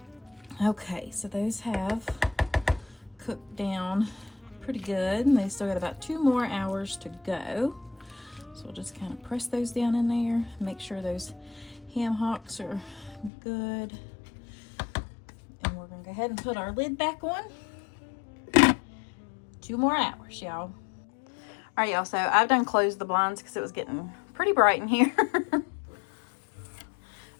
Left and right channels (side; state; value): right; drops out; at 13.3 s